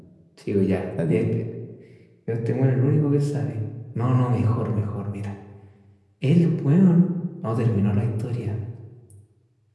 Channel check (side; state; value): both; identical; correlation 1.00